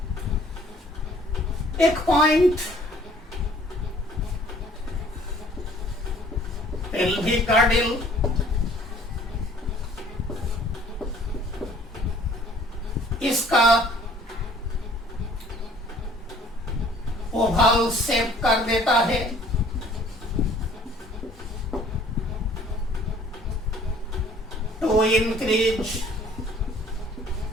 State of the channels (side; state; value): both; normal; correlation 0.56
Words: एक पॉइंट, पेल्विक गर्डल, इसका ओवल शेप कर देता है। To increase